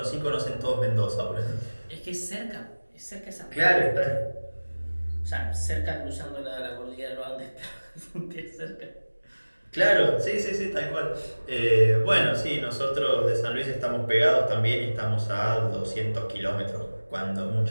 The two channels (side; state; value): both; inverted; correlation -1.00